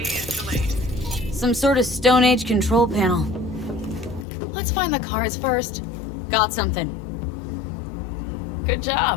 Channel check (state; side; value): drops out; right; at 4.2 s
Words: is delayed. Some sort of Stone Age control panel. Let's find the cards first. Got something. Good